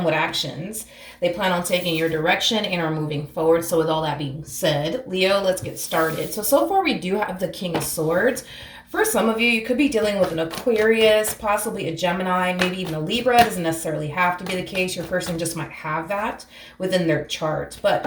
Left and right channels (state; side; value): identical; both; correlation 1.00